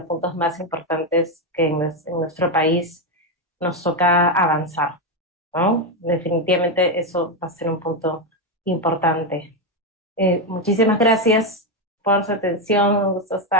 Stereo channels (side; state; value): both; normal; correlation 0.07